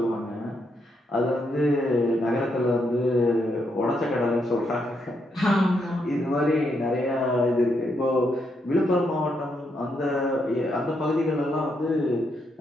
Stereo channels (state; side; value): normal; both; correlation 0.78